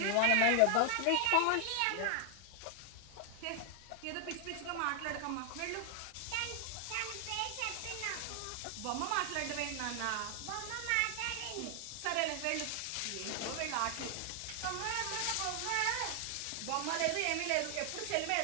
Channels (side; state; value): both; different; correlation 0.00